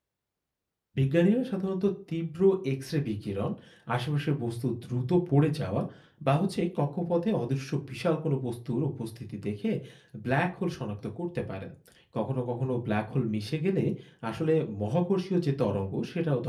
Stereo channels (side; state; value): both; identical; correlation 1.00